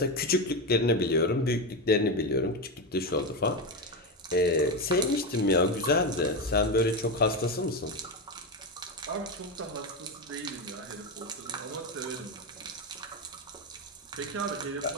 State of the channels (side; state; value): both; normal; correlation 0.13